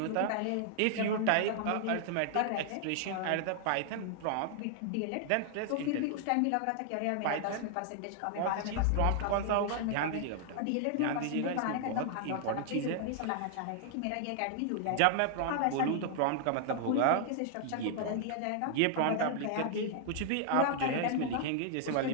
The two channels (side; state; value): both; different; correlation 0.00